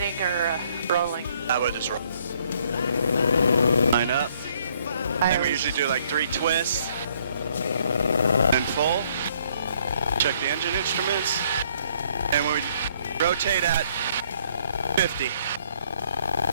or a rolling? I would just roll. Line up. And we usually do like 3 twists. And full. Check the engine instruments. And we rotate at 50.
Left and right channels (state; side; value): inverted; both; correlation -0.66